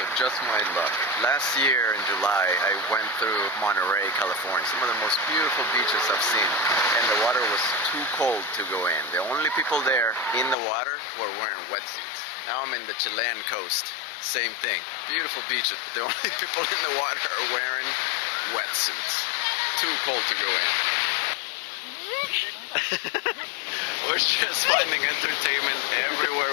just my luck. Last year in July, I went through Monterey, California. Some of the most beautiful beaches I've seen. And the water was too cold to go in. The only people there in the water were wearing wetsuits. Now I'm in the Chilean coast. Same thing. Beautiful beaches, but the only people in the water are wearing wetsuits. Too cold to go in. We're just finding entertainment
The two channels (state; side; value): drops out; right; at 10.6 s